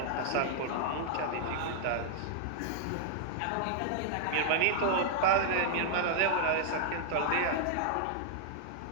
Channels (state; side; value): different; both; correlation -0.01